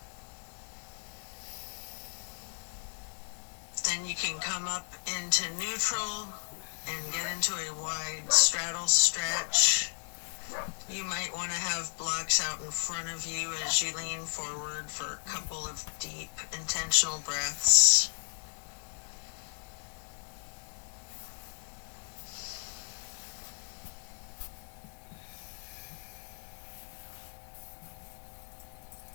Then you can come up into neutral and get into a wide straddle stretch. You might want to have blocks out in front of you as you lean forward for a couple of deep, intentional breaths.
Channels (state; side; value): silent; right; 55 dB below the other